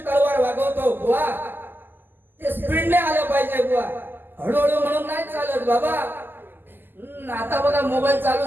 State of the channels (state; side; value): late; left; 0.094 ms